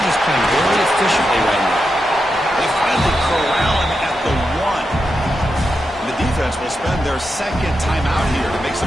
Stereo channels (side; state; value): both; normal; correlation 0.87